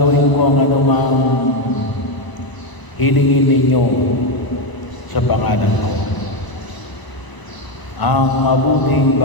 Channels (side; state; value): right; late; 1.0 ms